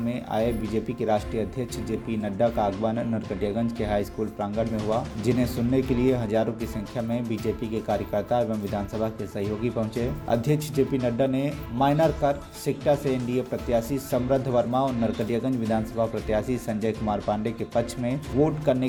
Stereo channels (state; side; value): identical; both; correlation 1.00